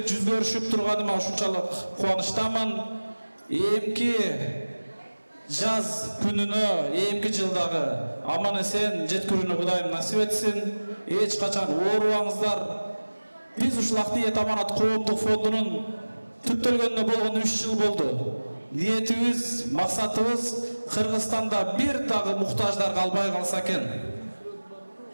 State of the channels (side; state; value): both; inverted; correlation -1.00